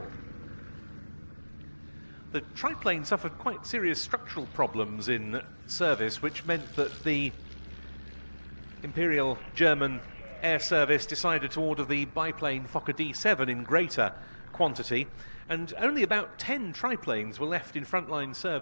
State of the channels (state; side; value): inverted; both; correlation -1.00